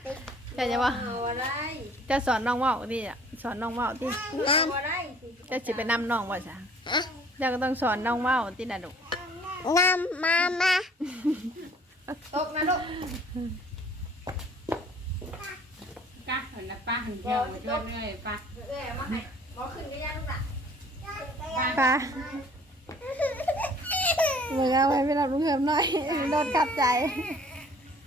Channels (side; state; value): both; normal; correlation 0.54